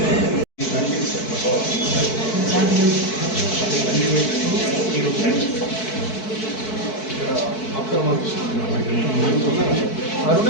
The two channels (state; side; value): late; right; 4.6 ms